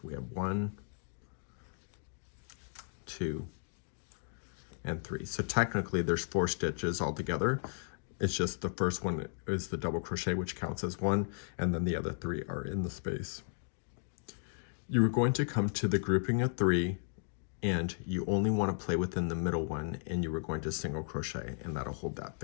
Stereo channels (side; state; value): right; silent; digital silence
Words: we have 1, 2, and 3. So technically there's 4 stitches altogether. It's just the first one is the double crochet, which counts as 1, and then the other 3 are in the space. You are going to come to the grouping of 3, and you only want to play within the middle one, and you are going to single crochet, and that'll hold that